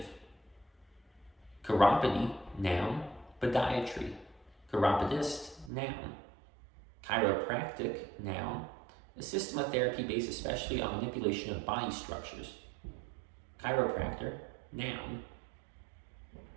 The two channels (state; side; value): drops out; left; at 5.7 s